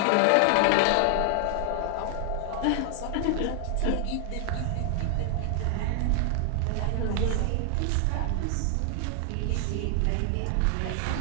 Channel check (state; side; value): different; both; correlation 0.00